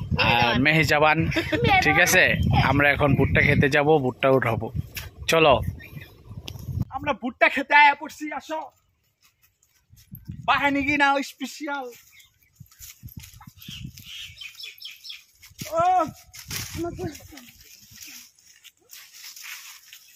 আর মেহেজাবান, ঠিক আছে। আমরা এখন ভুট্টা খেতে যাব, ভুট্টা উঠাবো, চলো। আমরা ভুট্টা খেতে আয়া পড়ছি, আসো। বাহিনী কি না স্পেশাল।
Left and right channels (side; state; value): both; identical; correlation 1.00